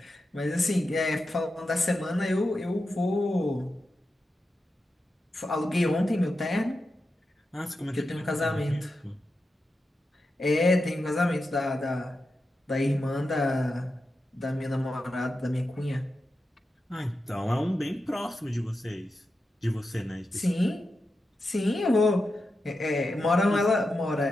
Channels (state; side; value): normal; both; correlation 0.89